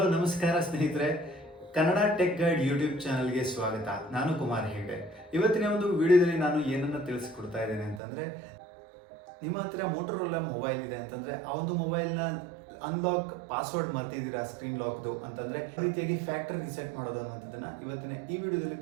ನಮಸ್ಕಾರ ಸ್ನೇಹಿತರೆ, Kannada tech guide YouTube ಚಾನಲ್ಗೆ ಸ್ವಾಗತ. ನಾನು ಕುಮಾರ್ ಹೆಗ್ಡೆ. ಇವತ್ತಿನ ಒಂದು ವಿಡಿಯೋದಲ್ಲಿ ನಾನು ಏನನ್ನು ತಿಳಿಸ್ಕೊಡ್ತಾ ಇದ್ದೇನೆ ಅಂತಂದರೆ, ನಿಮ್ಮ ಹತ್ರ ಮೋಟೋರೋಲಾ ಮೊಬೈಲ್ ಇದೆ ಅಂತಂದರೆ ಆ ಒಂದು ಮೊಬೈಲ್ನ ಅನ್ಲಾಕ್ ಪಾಸ್ವರ್ಡ್ ಮರ್ತಿದ್ದೀರಾ ಸ್ಕ್ರೀನ್ ಲಾಕ್ದು ಅಂತಂದರೆ ಈ ರೀತಿಯಾಗಿ ಫ್ಯಾಕ್ಟರಿ ರಿಸೆಟ್ ಮಾಡೋದು ಅನ್ನೋದನ್ನು ಇವತ್ತಿನ ಈ ವಿಡಿಯೋದಲ್ಲಿ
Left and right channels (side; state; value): left; drops out; at 8.0 s